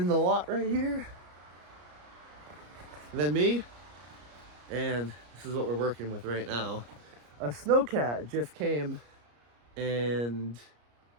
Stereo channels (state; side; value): late; left; 34 ms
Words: the lot right here. And then me. And this is what we're working with right now. A snowcat just came and